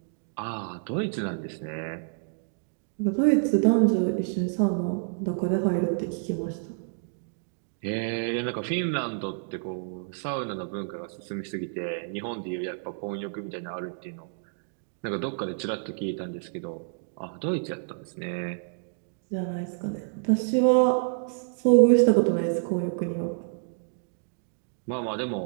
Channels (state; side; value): silent; left; digital silence